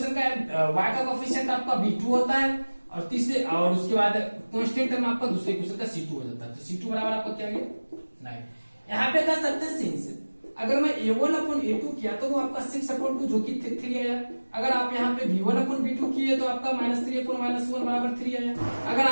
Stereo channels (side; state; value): both; inverted; correlation -1.00